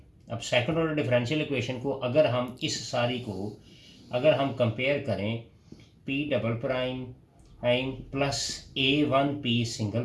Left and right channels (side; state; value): both; identical; correlation 1.00